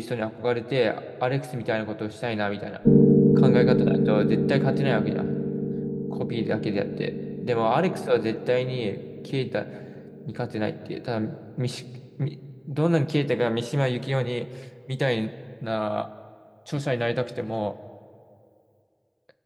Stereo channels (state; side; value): identical; both; correlation 1.00